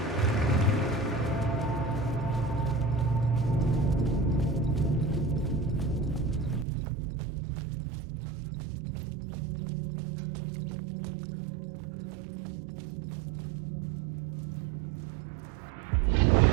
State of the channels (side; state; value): left; drops out; at 6.7 s